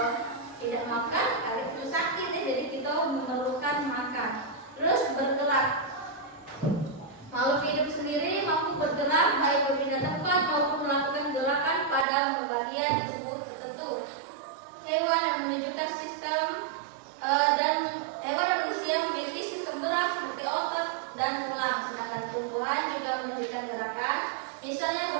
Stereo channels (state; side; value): drops out; left; at 12.1 s